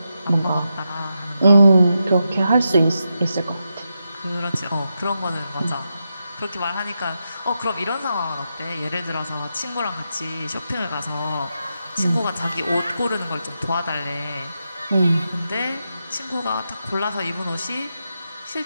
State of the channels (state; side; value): inverted; both; correlation -0.87